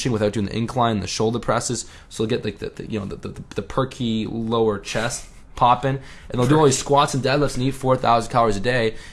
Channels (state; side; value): identical; both; correlation 1.00